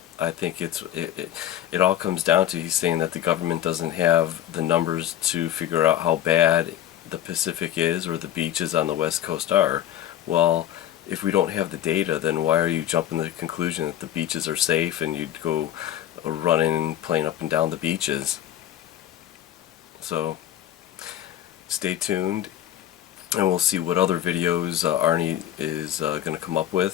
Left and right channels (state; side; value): quieter; right; 11.8 dB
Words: I think it all comes down to he's saying that the government doesn't have the numbers to figure out how bad the Pacific is or the beaches on the West Coast are. Well, if we don't have the data, then why are you jumping to the conclusion that the beaches are safe and you'd go running, playing up and down the beaches? So stay tuned, and we'll see what other videos Arnie is going to come up